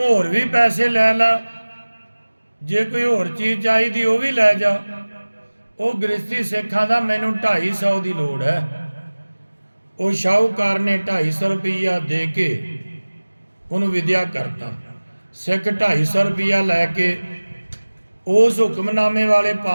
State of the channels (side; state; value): both; inverted; correlation -1.00